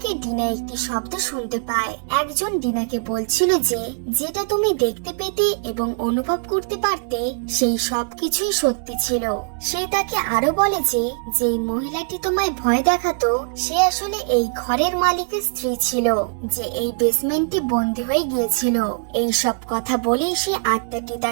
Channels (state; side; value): silent; left; 64 dB below the other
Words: ডিনা একটি শব্দ শুনতে পায়। একজন ডিনাকে বলছিল যে যেটা তুমি দেখতে পেতে এবং অনুভব করতে পারতে সেই সবকিছুই সত্যি ছিল। সে তাকে আরো বলে যে যেই মহিলাটি তোমায় ভয় দেখাতো সে আসলে এই ঘরের মালিকের স্ত্রী ছিল, যে এই বেসমেন্টে বন্দী হয়ে গিয়েছিল। এই সব কথা বলেই সে আত্মাটি